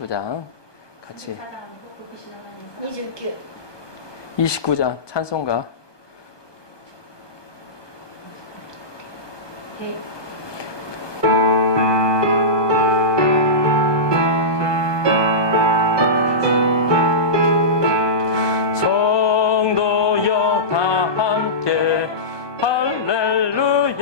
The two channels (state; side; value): late; right; 1.2 ms